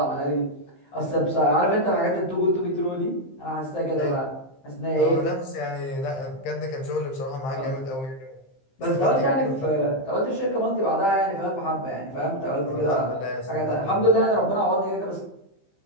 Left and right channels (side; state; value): right; late; 15 ms